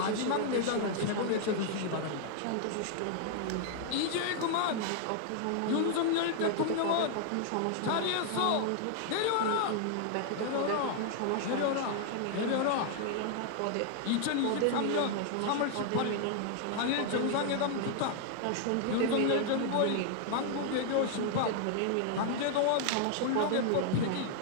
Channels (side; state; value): both; different; correlation 0.00